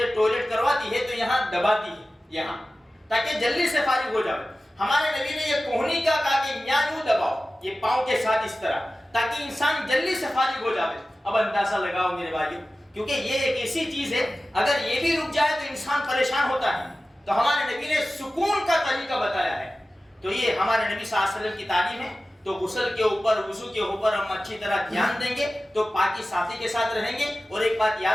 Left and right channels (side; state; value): both; normal; correlation 0.96